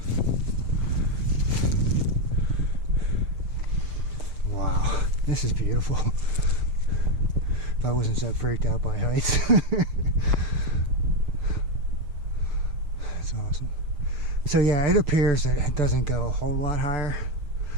Wow, this is beautiful. If I wasn't so freaked out by heights. That's awesome. So yeah, it appears that it doesn't go a whole lot higher.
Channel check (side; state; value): left; late; 6.8 ms